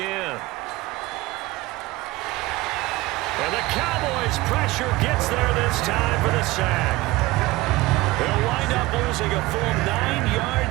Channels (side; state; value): left; quieter; 19.8 dB